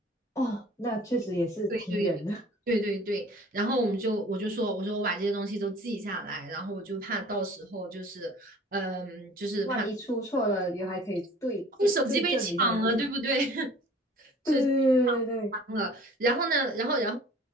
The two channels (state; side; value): normal; both; correlation 0.48